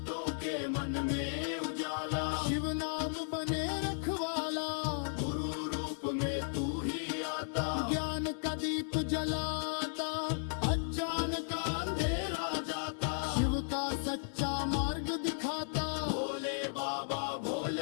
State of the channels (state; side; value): silent; right; digital silence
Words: के मन में उजाला, शिव नाम बने रखवाला। गुरु रूप में तू ही आता, ज्ञान का दीप जलाता। अज्ञान का अंधेरा जाता, शिव का सच्चा मार्ग दिखाता। भोले बाबा